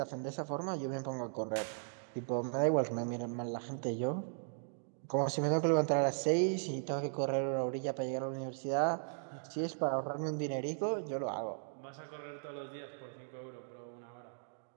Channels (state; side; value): silent; left; digital silence